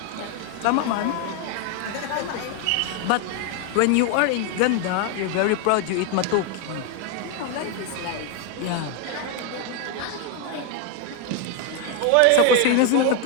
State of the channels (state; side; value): different; both; correlation 0.01